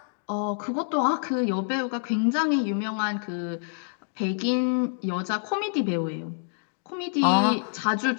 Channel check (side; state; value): right; silent; digital silence